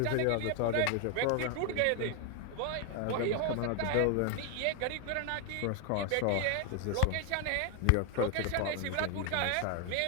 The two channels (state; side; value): different; both; correlation 0.01